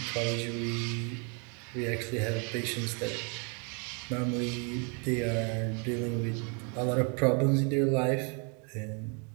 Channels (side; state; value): left; quieter; 35.8 dB